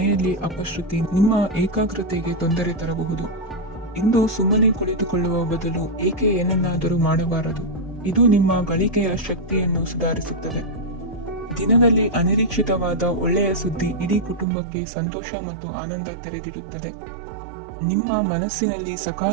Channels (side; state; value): left; drops out; at 14.5 s